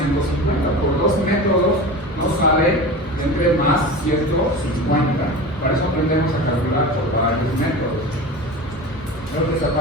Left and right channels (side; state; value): both; normal; correlation 0.31